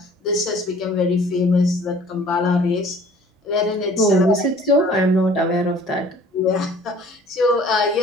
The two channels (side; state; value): both; normal; correlation 0.52